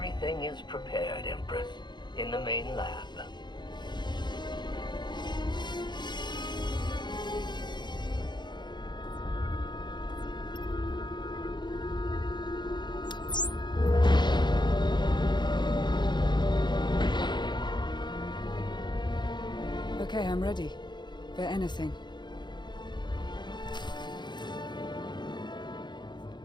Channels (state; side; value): late; right; 0.21 ms